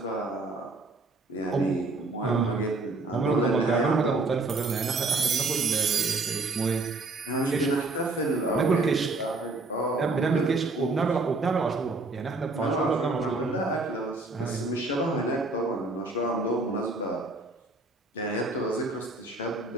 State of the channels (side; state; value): left; quieter; 3.3 dB